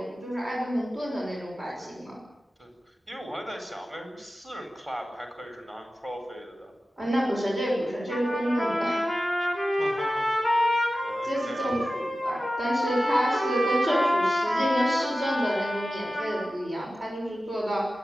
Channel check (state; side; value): normal; both; correlation 0.95